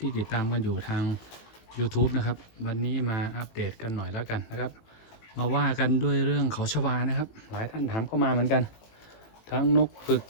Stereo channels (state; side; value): late; right; 18 ms